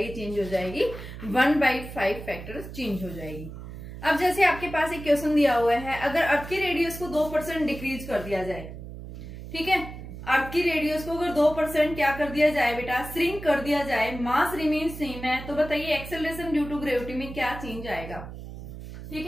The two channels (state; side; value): noise; right; hum, 11 dB below the sound